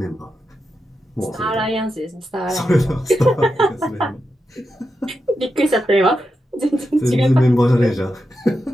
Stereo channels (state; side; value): normal; both; correlation 0.88